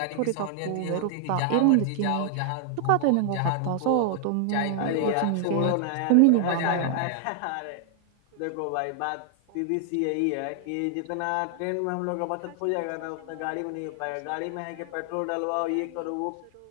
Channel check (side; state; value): both; different; correlation 0.00